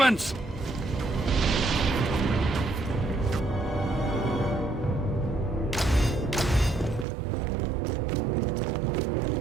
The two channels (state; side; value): drops out; left; at 7.1 s